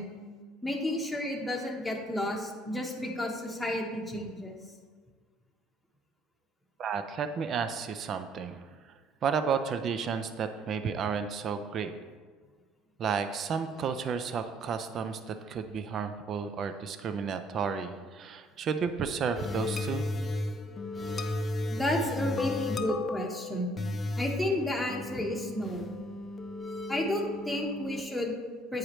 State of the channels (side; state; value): both; normal; correlation 0.64